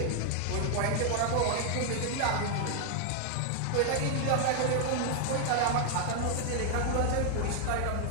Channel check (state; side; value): different; both; correlation 0.00